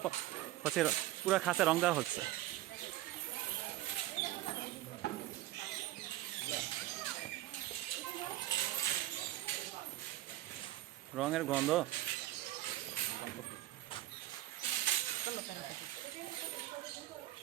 হচ্ছে পুরো খাঁচা রং দেওয়া হচ্ছে। রঙের গন্ধ।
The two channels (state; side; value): quieter; left; 15.4 dB